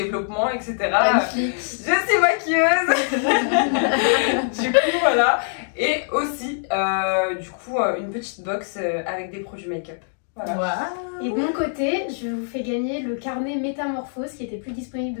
etc. Magnifique. Je suis maquilleuse. Du coup, voilà. Et aussi, du coup, une petite box avec des produits make-up. Voilà. Wow. Et de mon côté, je vous fais gagner le carnet Métamorphose qui était plus disponible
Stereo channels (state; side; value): silent; right; digital silence